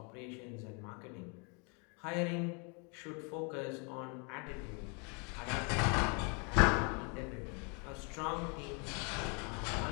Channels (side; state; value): right; quieter; 34.9 dB